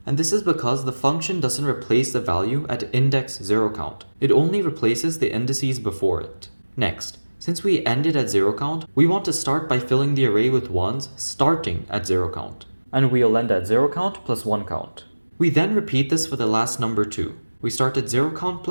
And this is because the function doesn't replace the value at index 0count. It only replaces the indices before it. Next, since we ended at 0count, we want to start by filling the array with ones starting at 0count. And we'll end at 0count plus 1count. We then repeat this for the last number 2. We start at 0count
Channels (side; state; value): both; inverted; correlation -1.00